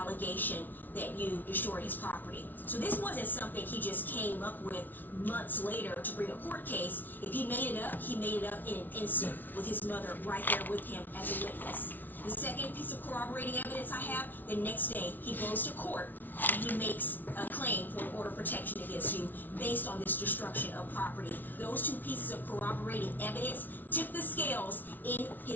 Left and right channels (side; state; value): right; late; 0.085 ms